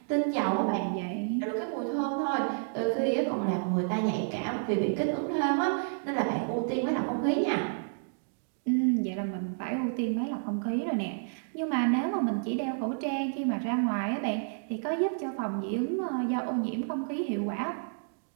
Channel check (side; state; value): left; silent; digital silence